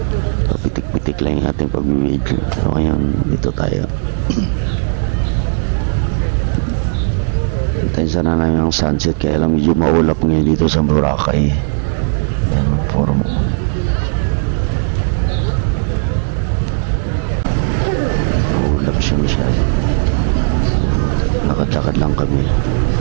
Pitik-pitik lang yung ating pag-video. So ngayon, dito tayo. Hintayin sana namin ang sunset kaya lang medyo maulap ngayon dito sa Boracay. Yan, forum. Maulap siya masyado. Lakad-lakad lang kami.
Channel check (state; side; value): silent; left; digital silence